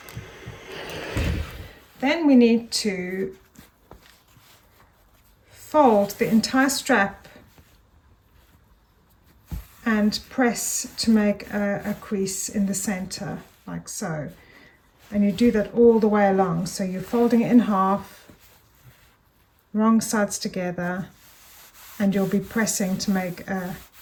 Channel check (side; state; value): both; identical; correlation 1.00